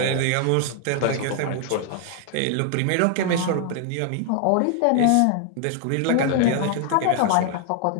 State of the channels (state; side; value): different; both; correlation 0.00